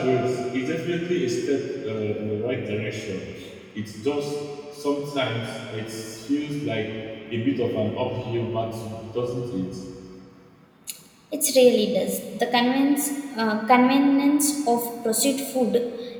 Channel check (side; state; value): both; identical; correlation 1.00